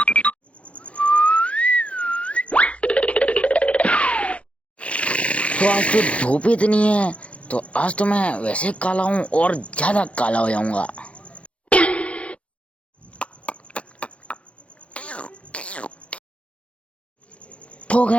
तो आज तो धूप इतनी है, तो आज तो मैं वैसे काला हूँ और ज़्यादा काला हो जाऊँगा। तो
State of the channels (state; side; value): late; right; 0.062 ms